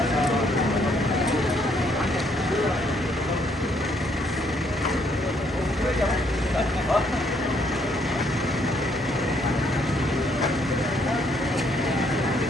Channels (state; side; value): normal; both; correlation 0.69